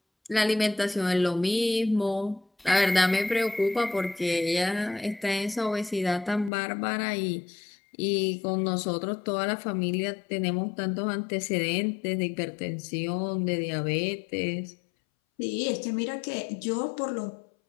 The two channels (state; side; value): drops out; right; at 6.5 s